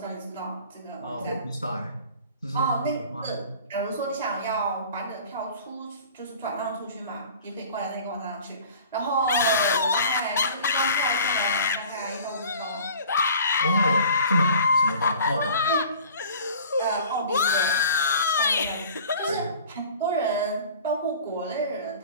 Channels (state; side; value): inverted; both; correlation -0.46